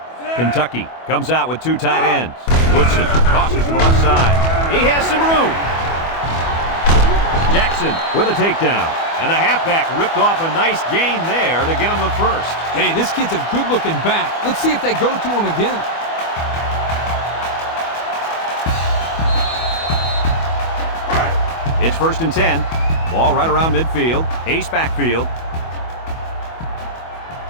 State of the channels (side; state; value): right; late; 25 ms